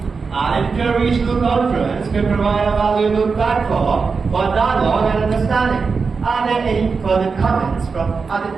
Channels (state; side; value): quieter; left; 4.9 dB